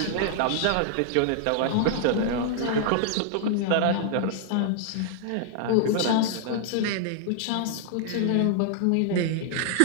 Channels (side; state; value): both; different; correlation -0.01